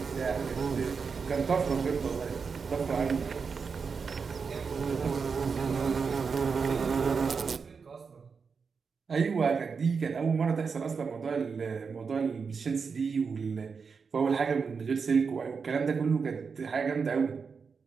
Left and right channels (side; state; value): left; quieter; 5.4 dB